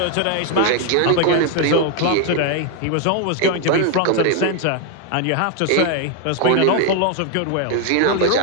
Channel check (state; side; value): different; both; correlation 0.01